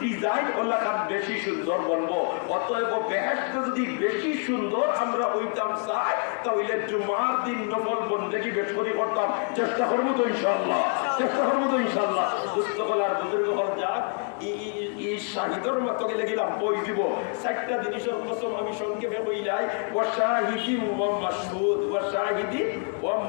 ডিজাইন ওলা কান বেশি সুন্দর বলবো অতএব বেহেশতে যদি বেশি সুন্দর আমরা হইতাম চাই তাহলে জুমার দিন নফল বন্দেগী বেশ করে করতাম চেষ্টা করবো তো ইনশাআল্লাহ চেষ্টা করবো তো ইনশাআল্লাহ দুস্থ বলার বুজুর্গ হল যাক এই শাহিদর মতো গেলে গেলাম বই দিব 4টা জিনিসের কসম আমি সংক্ষেপে কইলাই ওয়া শাহিদিন ওয়া মাশহুদ ওয়া শাহিদিন ওয়া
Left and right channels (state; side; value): quieter; right; 39.7 dB